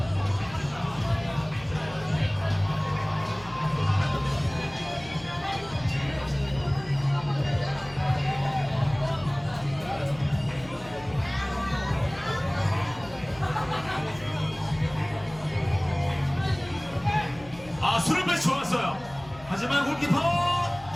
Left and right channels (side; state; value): left; noise; hum, 20 dB below the sound